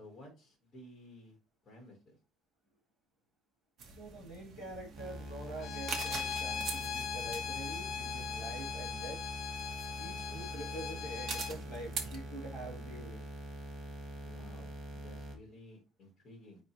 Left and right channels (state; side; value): normal; both; correlation 0.63